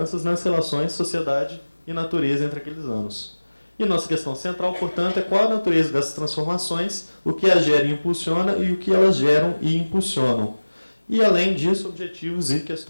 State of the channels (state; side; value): inverted; both; correlation -1.00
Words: nas relações sociedade e natureza entre aqueles anos. E nossa questão central, portanto, é qual a natureza dessas transformações, o que as gera e impulsiona e o que elas geram e impulsionam. E, além disso, objetivos e